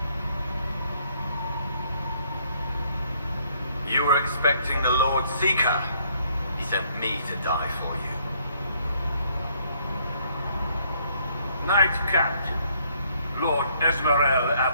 You were expecting the Lord Seeker. He sent me to die for you. Knight Captain, Lord Esmerel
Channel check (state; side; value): inverted; both; correlation -0.66